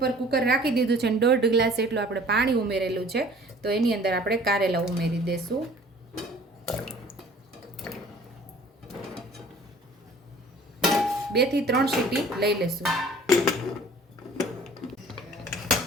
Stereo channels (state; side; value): normal; both; correlation 0.50